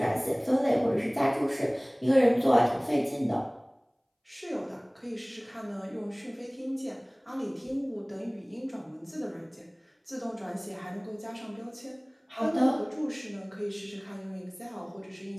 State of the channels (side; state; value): both; identical; correlation 1.00